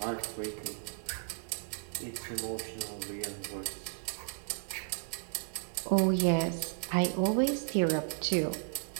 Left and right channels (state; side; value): silent; left; 55 dB below the other